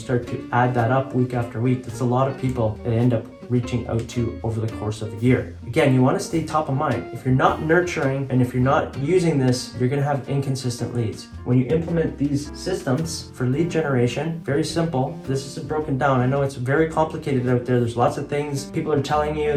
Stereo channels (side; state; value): both; identical; correlation 1.00